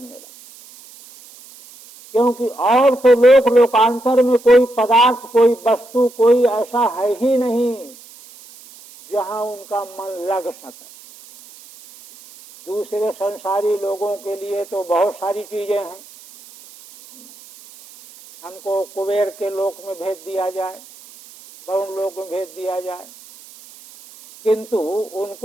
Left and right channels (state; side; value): noise; right; hiss, 21 dB below the sound